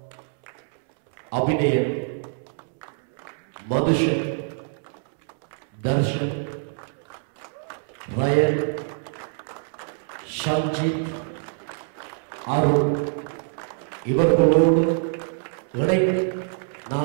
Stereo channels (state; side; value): silent; left; 62 dB below the other